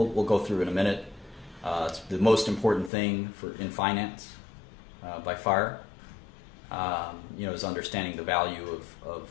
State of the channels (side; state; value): right; drops out; at 2.9 s